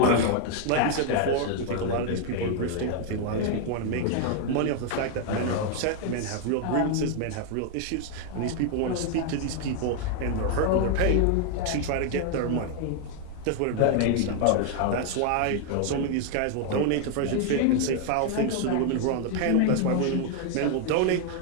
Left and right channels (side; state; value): both; different; correlation 0.00